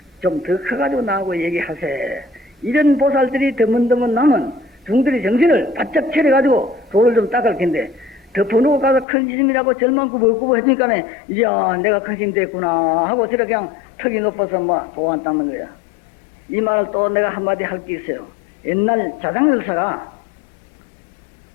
좀 더 커가지고 나하고 얘기하세. 이런 보살들이 드문드문 나면 중들이 정신을 바짝 차려가지고 돌을 좀 닦을 텐데 덮어놓고 가서 큰 스님이라고 절만 구부구부 해주니까 이야 내가 큰 스님 됐구나 하고 저렇게 그냥 턱이 높아서 뭐 도안 닦는 거야. 이 말을 또 내가 한마디 할 게 있어요. 옛날 자장열사가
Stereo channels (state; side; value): drops out; right; at 9.1 s